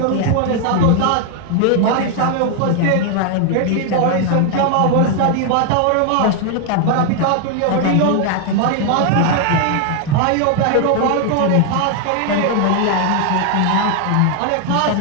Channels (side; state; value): both; different; correlation 0.00